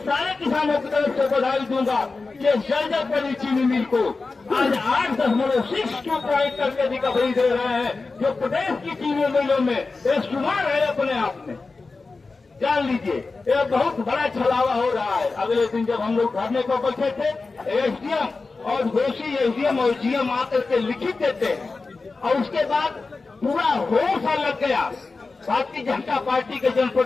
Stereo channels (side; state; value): right; quieter; 3.9 dB